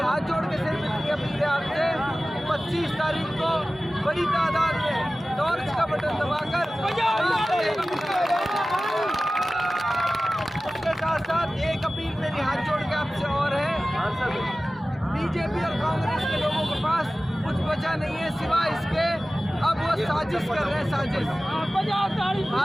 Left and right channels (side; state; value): both; normal; correlation 0.96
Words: जोड़ के सिर्फ इतनी अपील है आपसे, 25 तारीख को बड़ी तादाद में टॉर्च का बटन दबाकर, उसके साथ साथ एक अपील मेरी हाथ जोड़ के आपसे और है, बीजेपी और कांग्रेस के लोगों के पास कुछ बचा नहीं है सिवाय इसके, अब वो साजिश कर रहे हैं, साजिश।